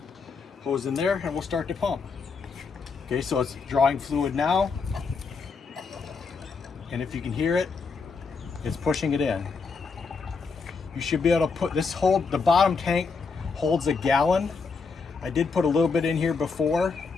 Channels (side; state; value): right; quieter; 4.9 dB